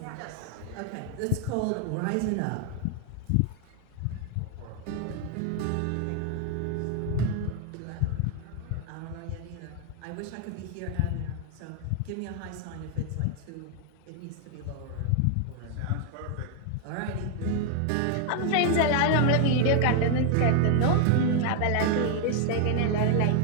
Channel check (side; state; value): both; different; correlation 0.00